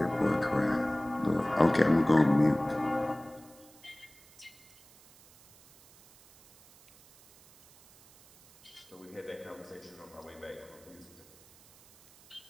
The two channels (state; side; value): noise; right; hiss, 26 dB below the sound